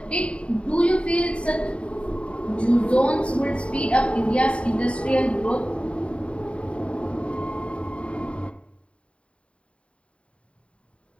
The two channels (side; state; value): right; late; 0.060 ms